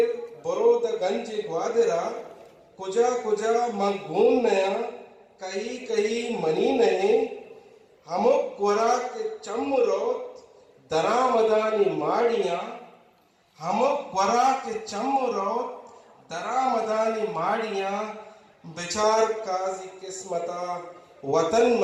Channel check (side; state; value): both; identical; correlation 1.00